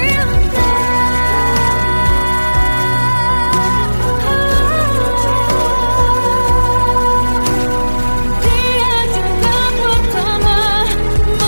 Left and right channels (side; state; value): both; inverted; correlation -1.00